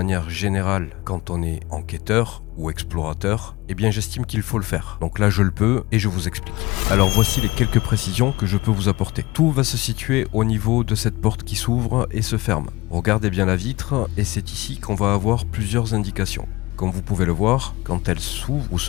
générale quand on est enquêteur ou explorateur, eh bien j'estime qu'il faut le faire. Donc là je le peux et je vous explique. Alors voici les quelques précisions que je peux vous apporter. Tout va se situer au niveau de cette porte qui s'ouvre et se ferme. Regardez bien la vitre et c'est ici qu'on va avoir plusieurs indications. Comme vous pouvez le voir, quand elle s'ouvre ou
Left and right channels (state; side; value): quieter; right; 20.6 dB